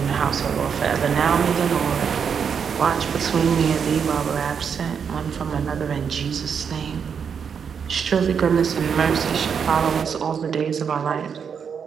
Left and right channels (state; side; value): quieter; left; 6.9 dB